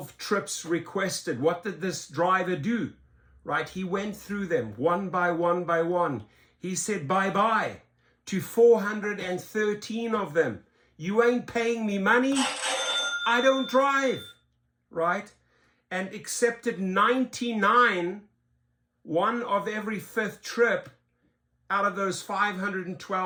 trips requested. What did this driver do, right? He went through them one by one by one. He said bye-bye to 413 of them. You ain't paying me money, I don't drive, right? And accepted 99, one of every fifth trip out of those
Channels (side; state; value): both; identical; correlation 1.00